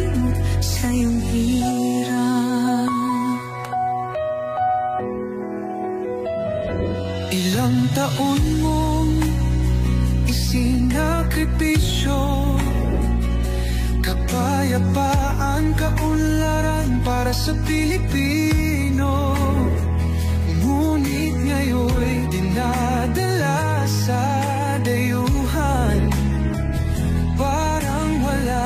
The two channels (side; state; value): both; identical; correlation 1.00